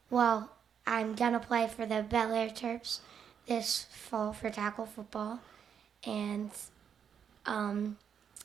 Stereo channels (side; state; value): left; quieter; 7.8 dB